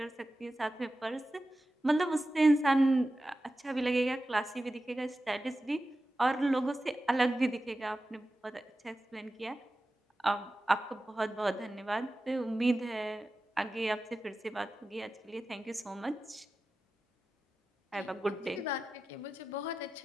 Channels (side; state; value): both; normal; correlation 0.93